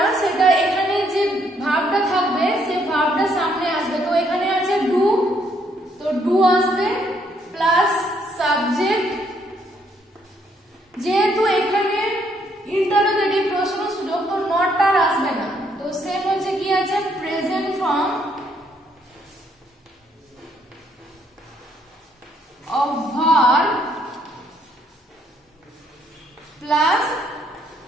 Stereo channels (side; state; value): both; normal; correlation 0.70